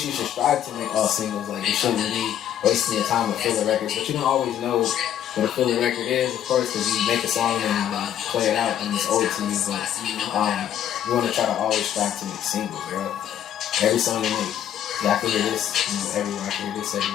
you should strive to make all singles. Like you shouldn't be wasting your time with filler records, but you don't always know what a filler record is, of course, because you make a song and play it out and it's old to you. But you want to try to always strive to make singles, bro. Every song you make, I can hear this, everywhere. I can hear this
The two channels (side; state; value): right; quieter; 10.5 dB